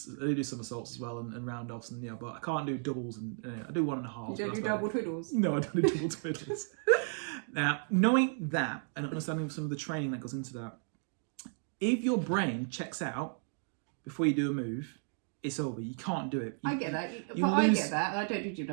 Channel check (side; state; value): left; silent; 55 dB below the other